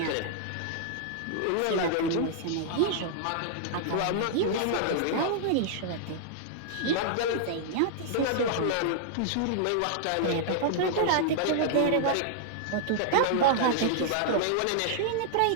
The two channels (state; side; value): different; both; correlation -0.01